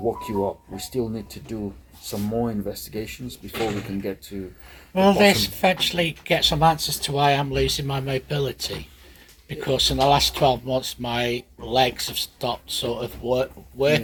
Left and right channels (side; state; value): both; identical; correlation 1.00